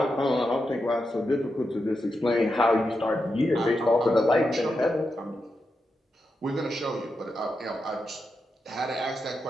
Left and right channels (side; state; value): both; normal; correlation 0.87